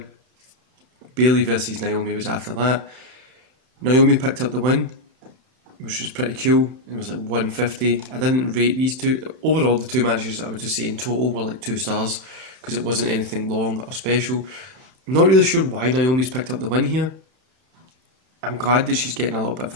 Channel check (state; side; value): late; left; 31 ms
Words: Bayley versus Naomi was after that. Naomi picked up the win, which was pretty cool. It was like 150. I didn't rate these two. Overall, the 2 matches I would just say in total were like 2 stars because it wasn't anything long or special. I'm not really sure why Naomi's picked up the win here. I'm glad that she's getting a little bit of